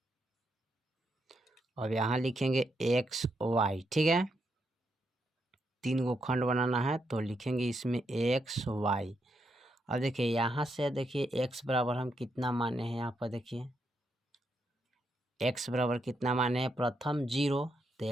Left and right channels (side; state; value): both; normal; correlation 0.80